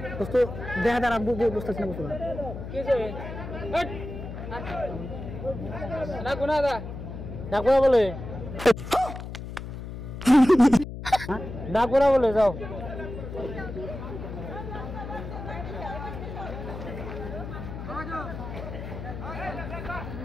দোস্ত দেখা দাঁড়া বুঝতেছি না বুঝতে না বলে না করা বলে যাও।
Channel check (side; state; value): left; noise; hum, 9 dB below the sound